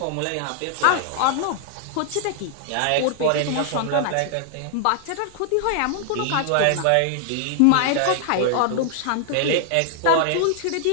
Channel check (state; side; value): different; both; correlation 0.00